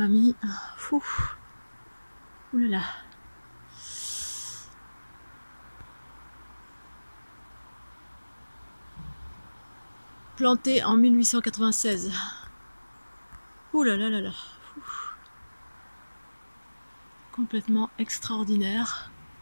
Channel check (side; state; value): both; inverted; correlation -1.00